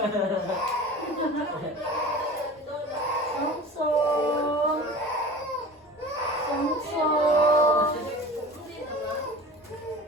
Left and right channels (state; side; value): normal; both; correlation 0.37